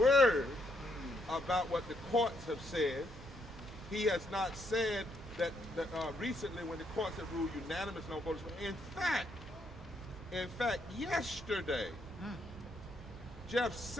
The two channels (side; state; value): both; normal; correlation 0.74